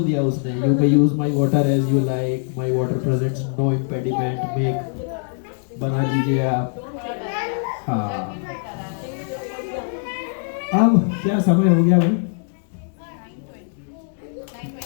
दिया उसने। You may use my water as you like, my water presents no impediment, make बना लीजिए आप। हाँ अब क्या समय हो गया भाई?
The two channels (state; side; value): silent; right; 64 dB below the other